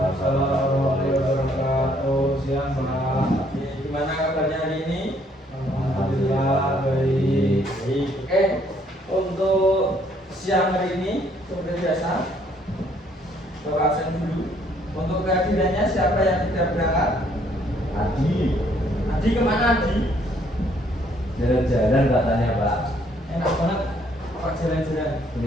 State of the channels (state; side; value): normal; both; correlation 0.66